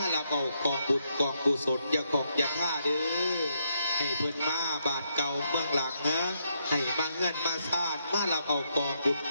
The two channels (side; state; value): both; inverted; correlation -0.77